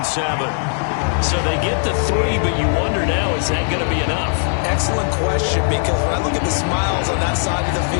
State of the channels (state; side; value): silent; right; 67 dB below the other